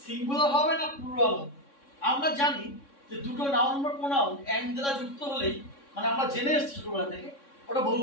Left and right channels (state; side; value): late; right; 3.6 ms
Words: সিঙ্গুলার হবে না প্লুরাল হবে। আমরা জানি যে দুটো নাউন বা প্রোনাউন এন্ড দ্বারা যুক্ত হলেই, মানে আমরা জেনে এসেছি ছোটবেলা থেকে, ওটা